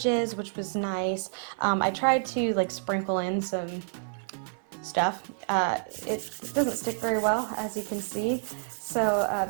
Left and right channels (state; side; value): silent; left; 59 dB below the other